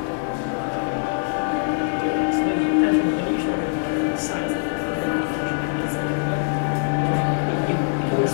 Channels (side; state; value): right; silent; digital silence